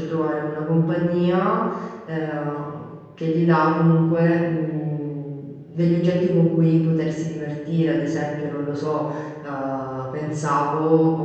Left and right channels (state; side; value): identical; both; correlation 1.00